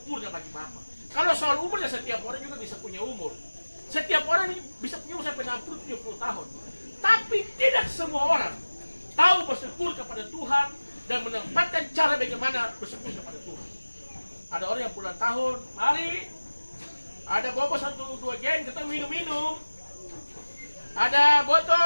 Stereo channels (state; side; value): inverted; both; correlation -1.00